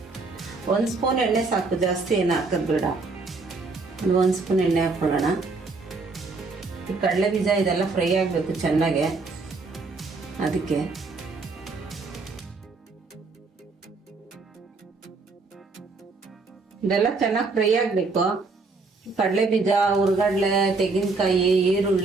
1 ಸ್ಪೂನ್ ಎಣ್ಣೆ ಸಾಕು, ಜಾಸ್ತಿ ಏನು ಹಾಕೋದು ಬೇಡ. 1 ಸ್ಪೂನ್ ಎಣ್ಣೆ ಹಾಕ್ಕೊಳ್ಳೋಣ. ಈ ಕಡಲೆ ಬೀಜ ಇದೆಲ್ಲ ಫ್ರೈ ಆಗಬೇಕು ಚೆನ್ನಾಗೆ, ಅದಕ್ಕೆ. ಇದೆಲ್ಲ ಚೆನ್ನಾಗಿ ಫ್ರೈ ಆಗಬೇಕು. ಕಡಲೆ ಬೀಜ, ಹುರ್ಗಡ್ಲೆ, ತೆಂಗಿನಕಾಯಿ,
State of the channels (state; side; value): quieter; left; 3.9 dB